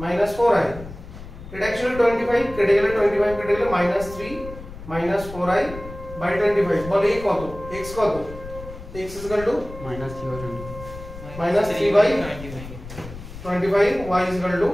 minus 4i এটা অ্যাকচুয়ালি 25 কেটে গেলে 25 কেটে গেলে minus 3 minus 4i by 25 বলে এই কত x কত x is equal to minus 3 minus 3 by 25 y is equal to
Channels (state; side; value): noise; left; rumble, 13 dB below the sound